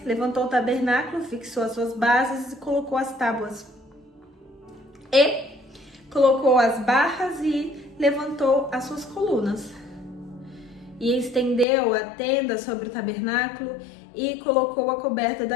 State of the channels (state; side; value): drops out; right; at 11.7 s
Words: levantou o tabernáculo, fixou as suas bases e colocou as tábuas. E colocou as barras e levantou as suas colunas. E estendeu a tenda sobre o tabernáculo e colocou a coberta